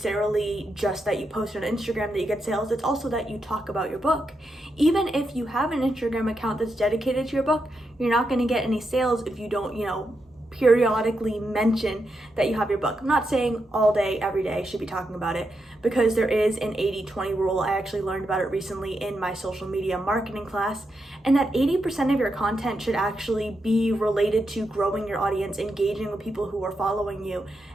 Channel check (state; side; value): normal; both; correlation 0.84